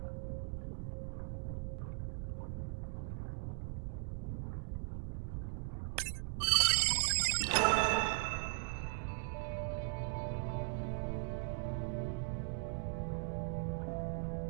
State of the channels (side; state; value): left; silent; 52 dB below the other